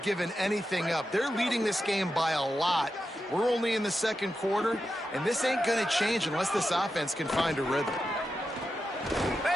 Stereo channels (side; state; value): both; normal; correlation 0.89